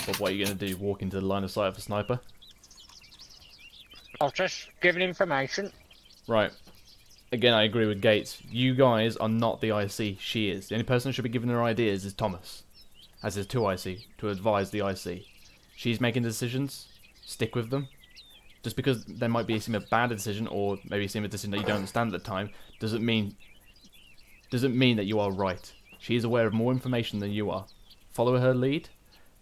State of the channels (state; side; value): identical; both; correlation 1.00